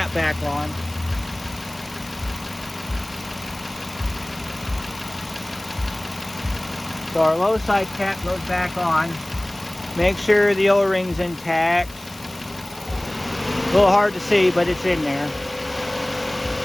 back on. So our low side cap goes back on. Make sure the O-ring's intact. A little hard to see, but it's in there. Go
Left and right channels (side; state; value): left; noise; hiss, 20 dB below the sound